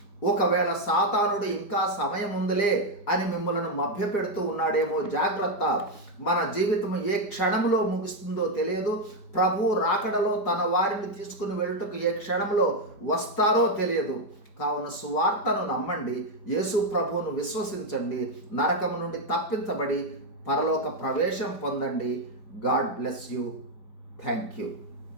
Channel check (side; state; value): right; late; 5.0 ms